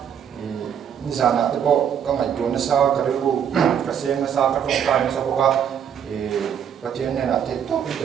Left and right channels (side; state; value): left; quieter; 8.6 dB